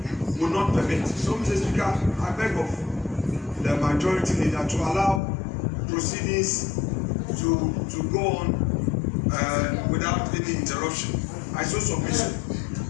will not permit. So, Mr. Speaker, I beg of the majority leader to allow proceedings to go on without any interruption. I so submission.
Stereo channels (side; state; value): right; drops out; at 5.2 s